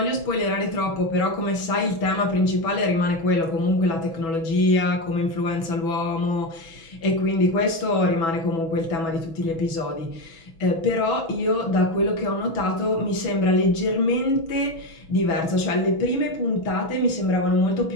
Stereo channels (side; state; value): right; late; 6.1 ms